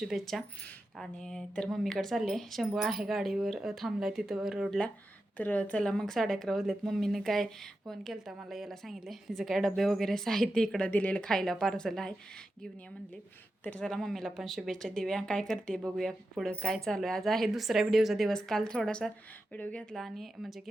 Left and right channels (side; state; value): both; normal; correlation 0.90